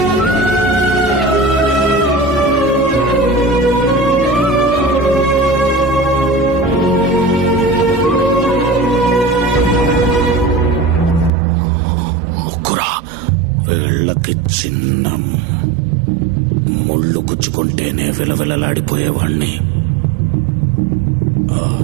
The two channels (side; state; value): left; drops out; at 11.3 s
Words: వీళ్ళకి చిన్న ముళ్ళు గుచ్చుకుంటేనే విలవిలలాడిపోయేవాణ్ణి.